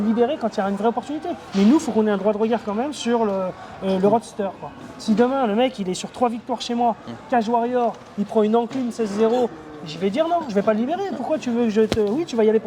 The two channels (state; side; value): identical; both; correlation 1.00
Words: quand il y a une vraie opportunité. Mais nous, il faut qu'on ait un droit de regard quand même sur le roadster, quoi. Si demain, le mec, il est sur 3 victoires chez moi, Cage Warrior, il prend une encline 16-0, je vais dire non, je vais pas le libérer. Pourquoi tu veux que je te. Oui, tu vas y aller